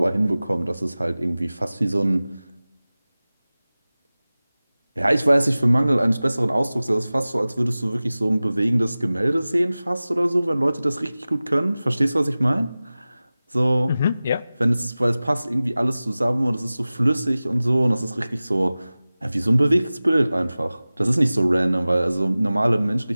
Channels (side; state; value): both; inverted; correlation -0.97